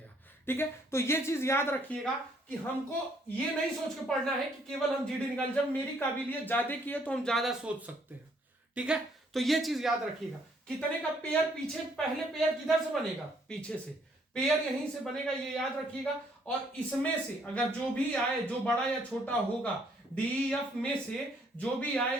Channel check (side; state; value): both; normal; correlation 0.67